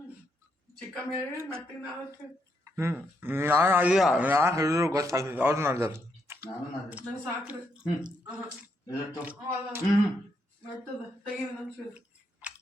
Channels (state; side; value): normal; both; correlation 0.78